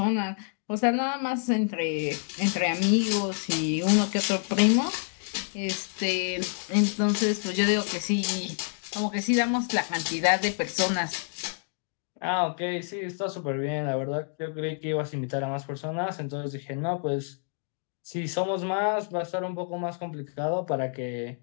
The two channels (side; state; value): right; silent; 58 dB below the other